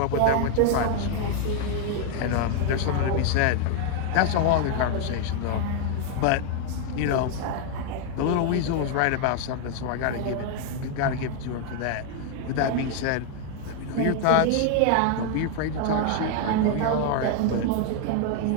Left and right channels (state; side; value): different; both; correlation 0.00